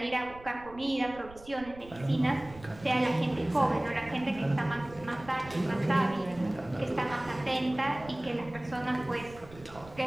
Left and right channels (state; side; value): noise; right; rumble, 19 dB below the sound